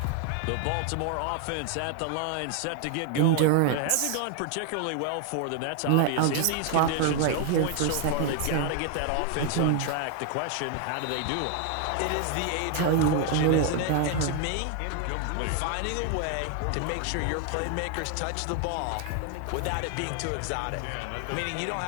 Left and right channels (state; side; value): different; both; correlation 0.00